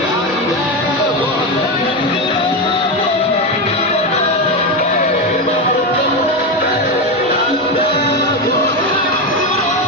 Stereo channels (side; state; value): both; normal; correlation 0.13